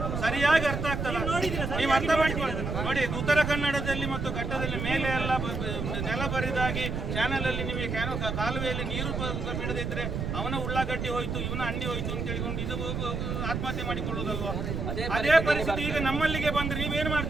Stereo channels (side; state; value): right; noise; rumble, 3 dB below the sound